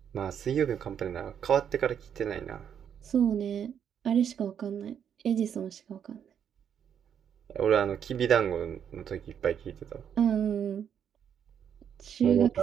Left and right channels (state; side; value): quieter; left; 8.4 dB